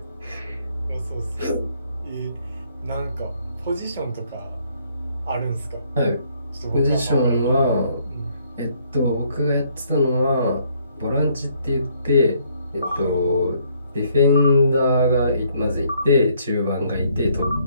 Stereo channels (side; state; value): both; inverted; correlation -0.67